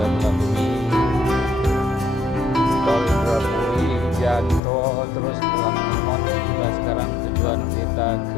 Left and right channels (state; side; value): drops out; right; at 4.6 s